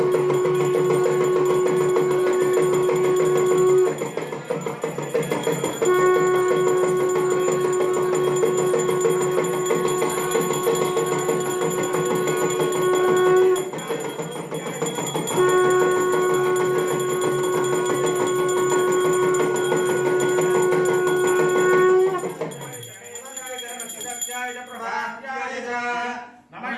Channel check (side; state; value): both; identical; correlation 1.00